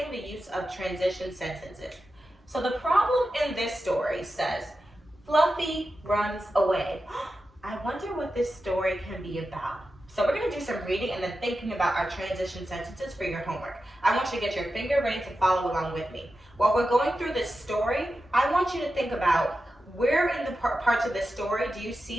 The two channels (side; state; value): both; normal; correlation 0.91